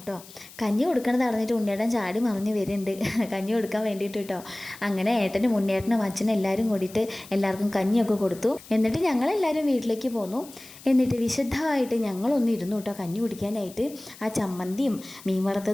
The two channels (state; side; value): noise; left; hiss, 19 dB below the sound